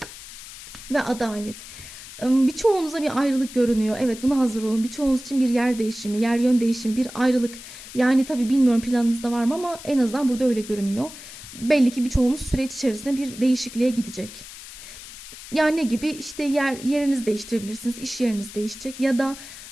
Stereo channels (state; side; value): noise; left; hiss, 14 dB below the sound